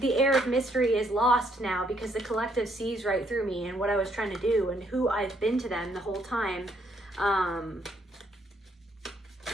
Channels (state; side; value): normal; both; correlation 0.71